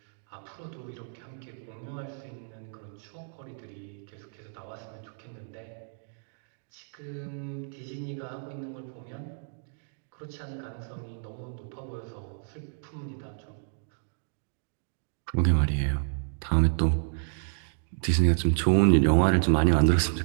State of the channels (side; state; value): left; silent; digital silence